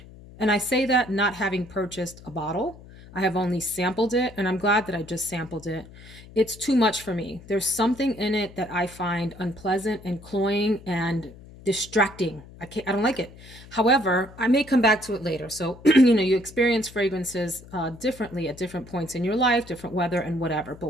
And I say that not having purchased a bottle. I have only sampled it, and I'm glad that I just sampled it. It's too much for me. There's something in it that I find unpleasant and cloying and distracting. I don't like it. However, I may come back to it later. So, you know, you experience fragrances differently at different points in your life, different weather and whatever.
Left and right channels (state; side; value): noise; left; hum, 19 dB below the sound